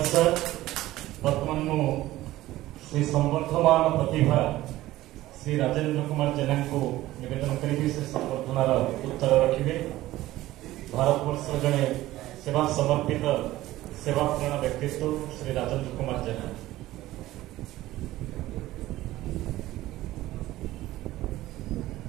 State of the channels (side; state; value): left; quieter; 16.1 dB